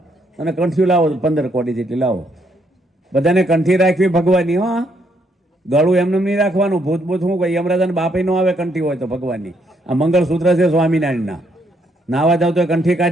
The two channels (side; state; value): both; normal; correlation 0.73